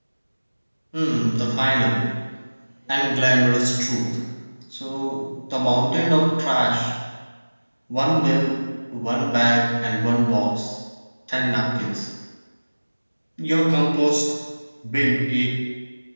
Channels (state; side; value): inverted; both; correlation -1.00